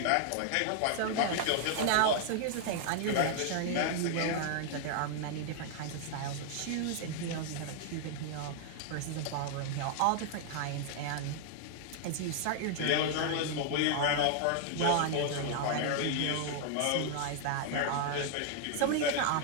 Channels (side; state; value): both; different; correlation 0.00